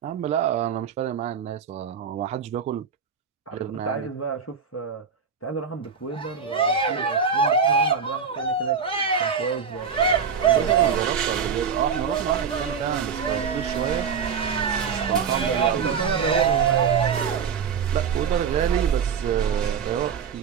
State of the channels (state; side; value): quieter; left; 6.5 dB